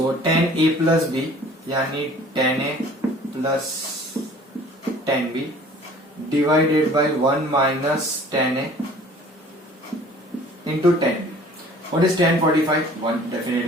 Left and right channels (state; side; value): normal; both; correlation 0.50